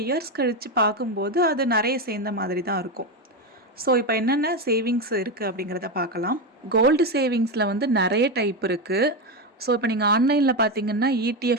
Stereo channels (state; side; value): normal; both; correlation 0.12